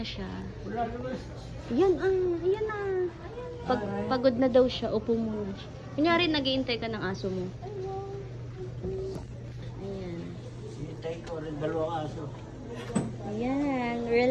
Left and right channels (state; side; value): identical; both; correlation 1.00